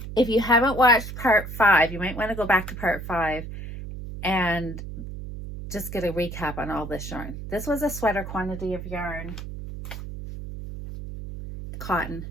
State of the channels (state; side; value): noise; right; hum, 9 dB below the sound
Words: If you haven't watched part 5, you might want to go back to part 5 and just get a recap on all this yarn. This was a sweater quantity of yarn, cotton.